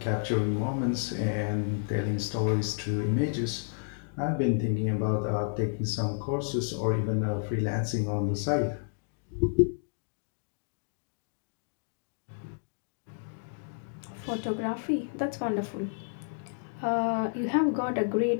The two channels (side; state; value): right; silent; digital silence